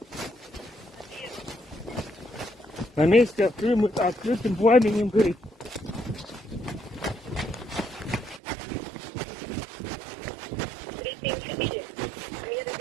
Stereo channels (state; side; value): drops out; left; at 8.4 s